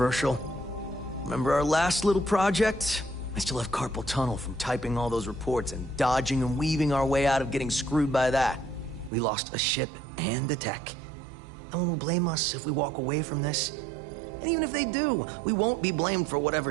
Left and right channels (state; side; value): drops out; left; at 9.1 s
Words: Remember our last little project? I still have carpal tunnel from typing all those reports and dodging and weaving our way out of getting screwed by that. We lost a ship and the tech. No one will blame us if we walk away from this. And even if they do, we won't be blamed for